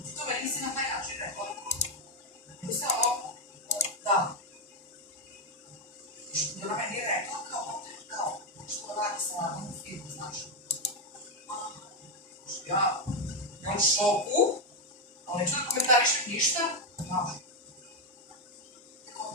ti to meni nisi na taj način rekla, nego se ovo, da, što ona meni je rekla, kao, što radi sa radom u filmu, znaš, ja u šoku, ali neću da komentarišem ništa, znaš,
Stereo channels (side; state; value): both; normal; correlation 0.04